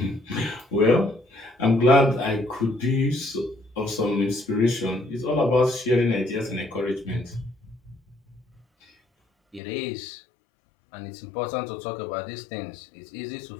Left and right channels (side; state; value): right; drops out; at 9.6 s